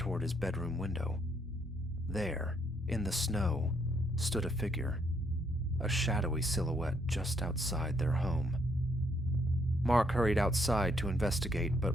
his bedroom window. There, in the snow, stood a figure, a shadowy silhouette just outside their home. Mark hurried outside to investigate,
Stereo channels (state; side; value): normal; both; correlation 0.71